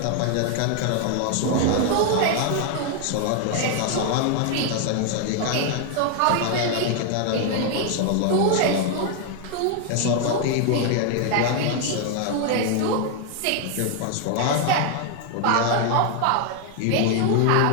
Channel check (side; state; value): both; different; correlation 0.00